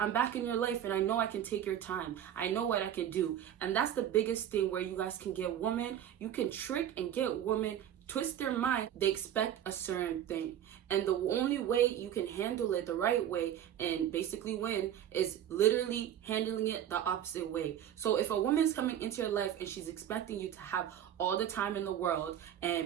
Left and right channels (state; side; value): quieter; left; 10.5 dB